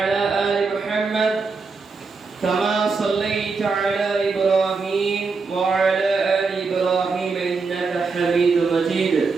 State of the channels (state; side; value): quieter; left; 4.5 dB